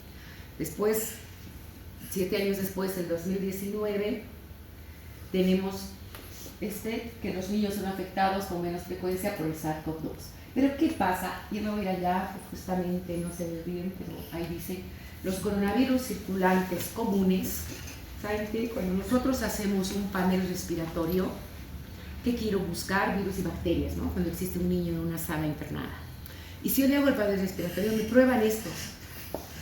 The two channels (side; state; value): both; identical; correlation 1.00